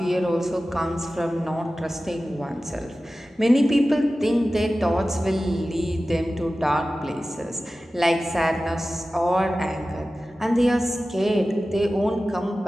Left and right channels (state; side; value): normal; both; correlation 0.95